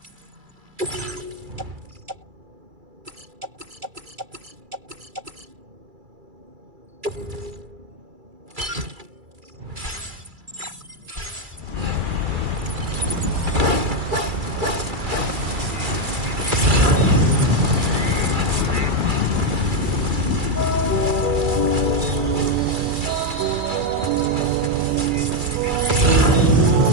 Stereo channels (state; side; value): late; left; 2.3 ms